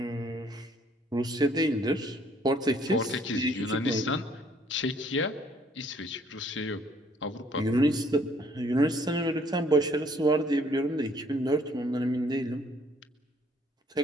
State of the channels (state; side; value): normal; both; correlation 0.62